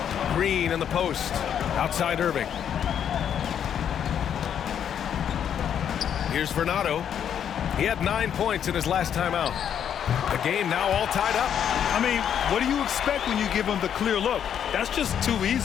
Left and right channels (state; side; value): quieter; right; 8.9 dB